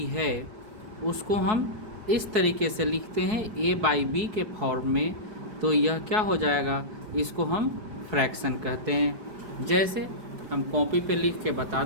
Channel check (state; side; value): late; left; 4.7 ms